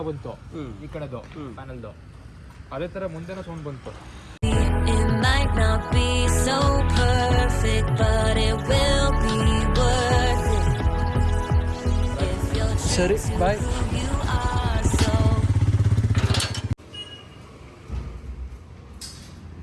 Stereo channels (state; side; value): identical; both; correlation 1.00